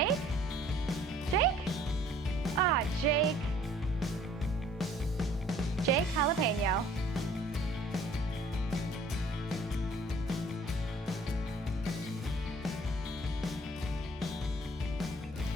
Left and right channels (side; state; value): both; normal; correlation 0.56